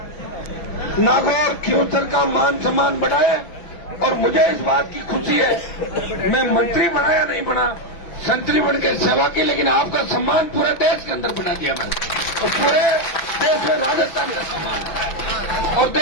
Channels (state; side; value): late; right; 6.1 ms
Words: नागौर खियूंसर का मान सम्मान बढ़ाए। और मुझे इस बात की खुशी है, मैं मंत्री बना या नहीं बना, संतरी बन के सेवा की, लेकिन आपका सम्मान पूरे देश के अंदर बना दिया मैंने, और पूरे देश में राजस्थान का सम्मान। और